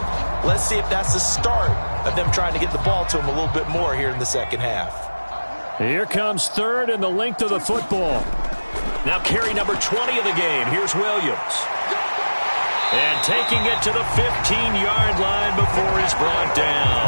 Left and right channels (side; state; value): both; inverted; correlation -1.00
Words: Let's see if that's the start of them trying to get the ball to him a little bit more here in the second half. Here comes 3rd and the length of the football. Now carry number 20 of the game. Here's Williams. And taking it to the 15-yard line before he's brought